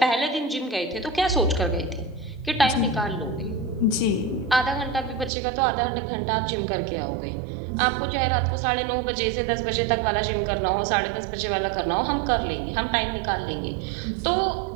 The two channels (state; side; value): drops out; left; at 5.3 s